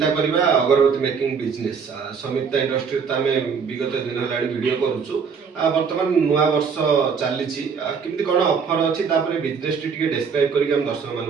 करवा अगरबत्ती मेकिंग बिजनेस संयुक्ता इंडस्ट्री तो आम विगत दिन है वीडियो करूँ बर्तमान नुआ वर्ष चली केमती कौन ऑफर अच्छी बिजनेस टी डिस्क्राइब करके दर्शक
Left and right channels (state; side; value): quieter; left; 6.0 dB